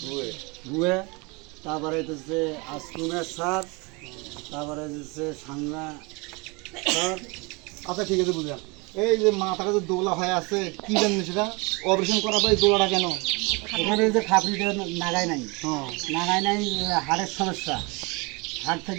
ভুয়ে, তারপরে হচ্ছে আসকুমের স্যার, তারপরে হচ্ছে সাংনা স্যার। আচ্ছা ঠিক আছে, বুঝলাম। এই যে মাথাটা যে দোলা হয়ে আছে, কি জানেন সেটা? অপারেশন করার পরে এই দোলাটা কেন? এখানে যে খাপড়িটা নাগায় নাই, হ্যাঁ। নাগায় নাই, হাড়ের সমস্যা, হাড়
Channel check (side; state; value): left; quieter; 28.0 dB